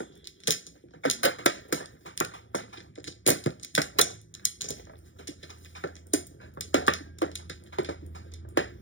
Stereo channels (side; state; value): right; late; 0.56 ms